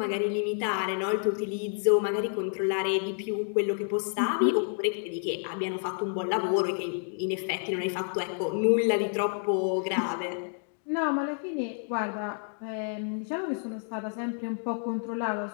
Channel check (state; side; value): silent; right; 58 dB below the other